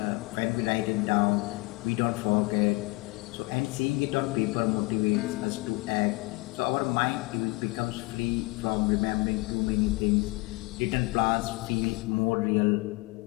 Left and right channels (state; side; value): quieter; right; 24.8 dB